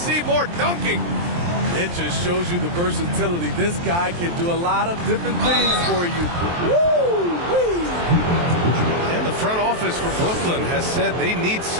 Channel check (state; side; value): late; left; 23 ms